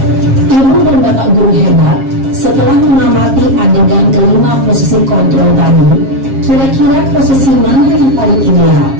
Ibu dan bapak guru hebat, setelah mengamati adegan kelima posisi kontrol tadi, kira-kira posisi mana yang paling ideal?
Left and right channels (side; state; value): left; late; 7.4 ms